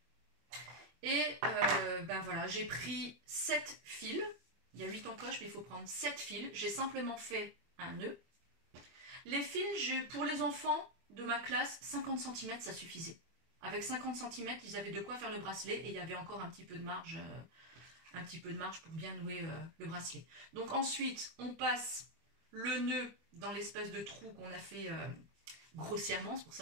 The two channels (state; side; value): late; left; 25 ms